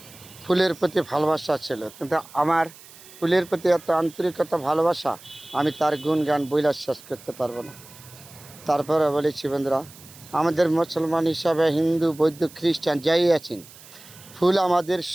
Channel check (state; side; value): noise; right; hiss, 21 dB below the sound